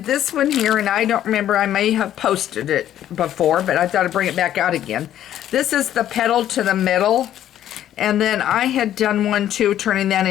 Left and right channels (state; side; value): quieter; right; 11.5 dB